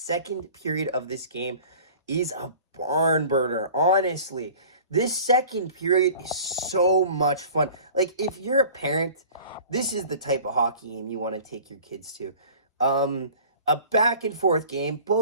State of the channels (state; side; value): inverted; both; correlation -0.45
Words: period of this game is a barn burner, honestly. This second period is so much fun. Like, if you're a parent, this is the type of hockey game you want to take your kids to. A back and forth game,